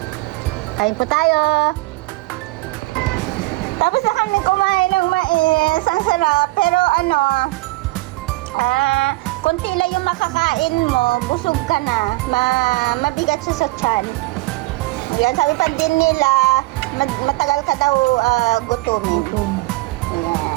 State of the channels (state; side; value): quieter; left; 21.3 dB